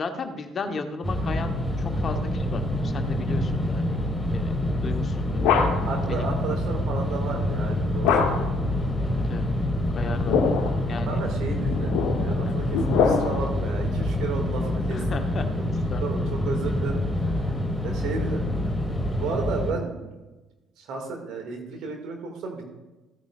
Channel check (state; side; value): normal; both; correlation 0.67